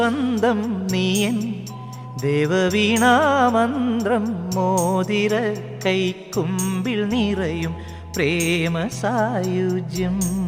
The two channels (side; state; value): both; identical; correlation 1.00